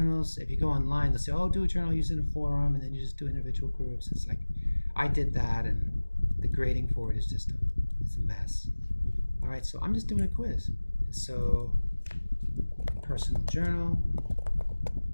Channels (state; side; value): inverted; both; correlation -1.00